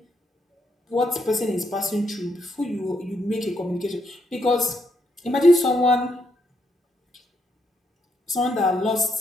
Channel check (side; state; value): both; normal; correlation 0.77